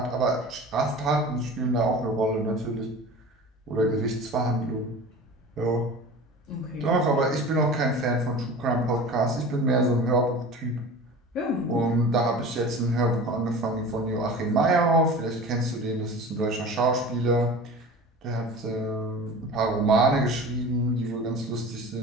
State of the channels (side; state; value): both; normal; correlation 0.37